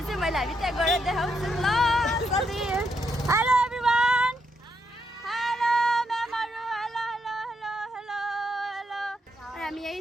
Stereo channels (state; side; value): normal; both; correlation 0.79